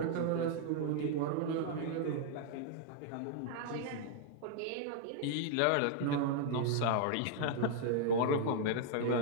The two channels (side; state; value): both; different; correlation 0.00